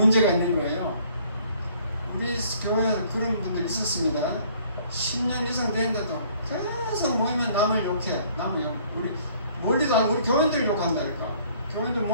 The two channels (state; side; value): inverted; both; correlation -0.59